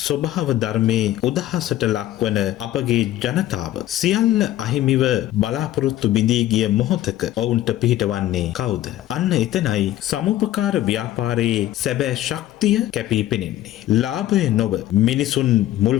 ස්වභාව ධර්මයේ උදහසට ලක්වන අපගේ ජනතාව සියල්ල අහිමිව බලාපොරොත්තු බිඳී ගිය මොහොතක ඔවුන්ට පිහිටවන්නේ කවුද? අන්න එතනයි සමුපකාර ව්‍යාපාරයේ සැබෑ ශක්තිය කැපී පෙනෙන්නේ. ලාභය නොව මිනිසුන් මුල්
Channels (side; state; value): right; quieter; 13.8 dB